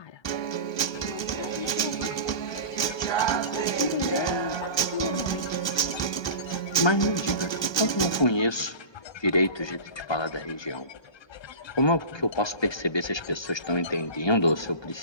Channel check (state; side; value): late; right; 1.3 ms